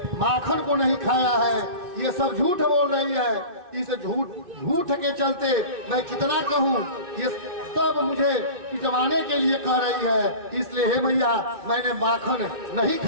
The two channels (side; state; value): left; late; 2.6 ms